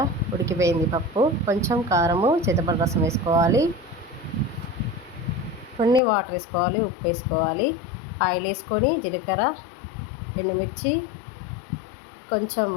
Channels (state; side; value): drops out; right; at 6.0 s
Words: ఉడికిపోయింది పప్పు. కొంచెం కారము, చింతపండు రసం వేసుకోవాలి, కొన్ని వాటర్ వేసుకోవాలి, ఉప్పు వేసుకోవాలి. ఆయిల్ వేసుకొని జీలకర్ర, ఎండుమిర్చి, కొంచెం